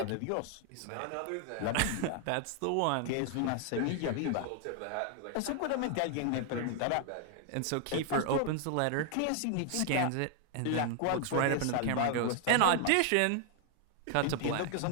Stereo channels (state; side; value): different; both; correlation 0.00